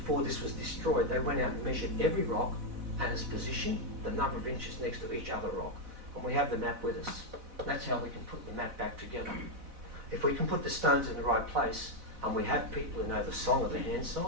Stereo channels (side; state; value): left; late; 4.0 ms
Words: this was destroyed, they went out and measured every rock and its position, the number of inches next to each other rock. And we have the map with us. That's how we can put the map back together. If we can put the stones in the right place, and we have people who know the song of the hand